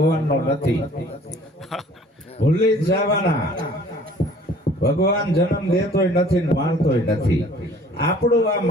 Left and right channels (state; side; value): normal; both; correlation 0.52